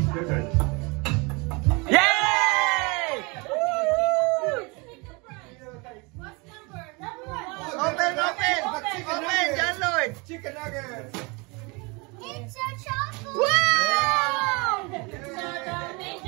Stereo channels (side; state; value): left; quieter; 28.4 dB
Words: turn. Yay! What's number 1? Open, John Lloyd. Chicken nuggets. It's a chocolate! Wow!